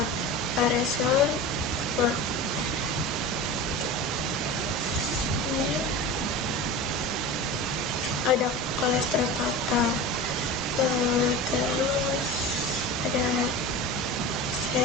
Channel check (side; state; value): both; normal; correlation 0.31